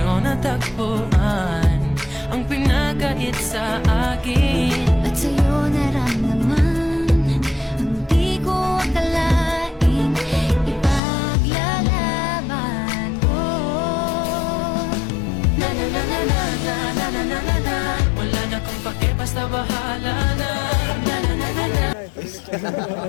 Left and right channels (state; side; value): drops out; right; at 11.0 s